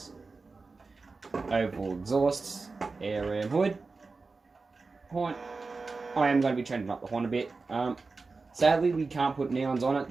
Overall exhausts, air ram hood, horn. I am going to be changing up the horn a bit. Sadly, we can't put neons on it.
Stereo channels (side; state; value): left; quieter; 4.0 dB